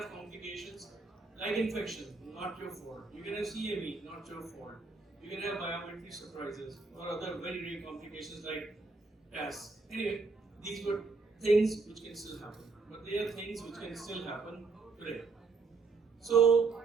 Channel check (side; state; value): left; quieter; 4.2 dB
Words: complications like infection, not your fault. You can have CME, not your fault. You can have biometry surprises or other very, very complications like TAS. Anyway, these were things which can still happen, but they are things which can still happen today. So